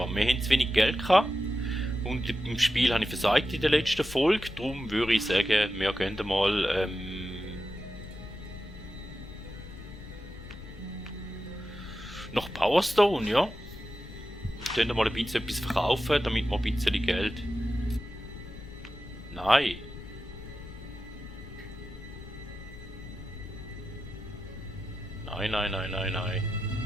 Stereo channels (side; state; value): left; noise; rumble, 14 dB below the sound